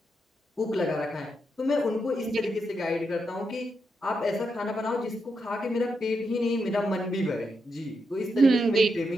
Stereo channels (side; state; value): both; normal; correlation 0.83